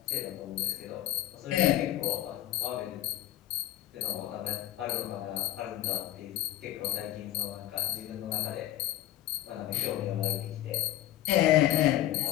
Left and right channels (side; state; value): right; quieter; 13.6 dB